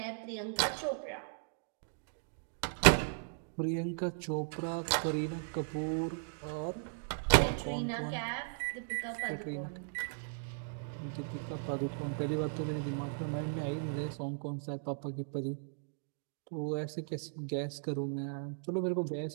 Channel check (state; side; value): silent; left; digital silence